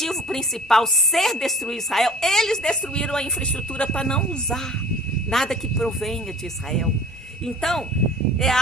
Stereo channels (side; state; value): both; normal; correlation 0.45